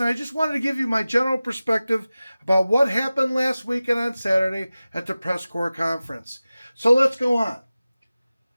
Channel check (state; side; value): inverted; both; correlation -0.96